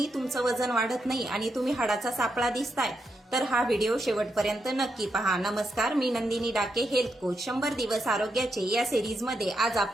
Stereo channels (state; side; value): normal; both; correlation 0.83